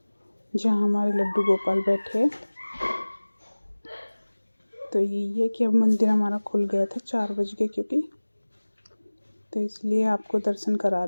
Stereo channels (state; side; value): inverted; both; correlation -1.00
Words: जहाँ हमारे लड्डू गोपाल बैठे हैं। तो यही है कि अब मंदिर हमारा खुल गया था 4 बज के, क्योंकि तो इसलिए आपको दर्शन करा